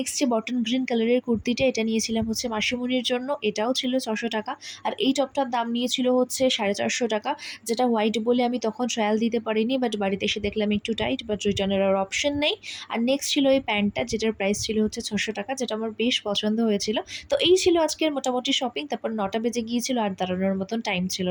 যে বটন গ্রিন কালারের কুর্তিটা, এটা নিয়েছিলাম হচ্ছে মাসিমণির জন্য, এটাও ছিল 600 টাকা। আর এই টপটার দাম নিয়েছিল হচ্ছে 450 টাকা, যেটা হোয়াইট বলে আমি তখন ট্রায়াল দিতে পারিনি, বাট বাড়িতে এসে দেখলাম একটু টাইট, বাট রিটার্নের আর অপশন নেই। আর নেক্সট ছিল এই প্যান্টটা, যেটার প্রাইস ছিল হচ্ছে 600 টাকা, যেটা আমার বেশ পছন্দ হয়েছিল। তো এই ছিল আজকের মোটামুটি শপিং। তারপর 9টা বেজে গিয়েছিল, আর দাঁড়ানোর মতন টাইম ছিল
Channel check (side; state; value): both; identical; correlation 1.00